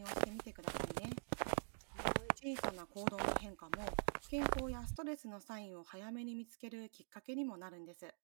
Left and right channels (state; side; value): silent; left; digital silence